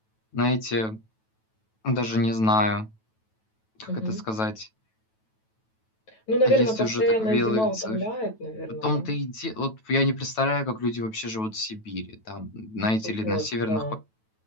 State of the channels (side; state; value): right; late; 9.2 ms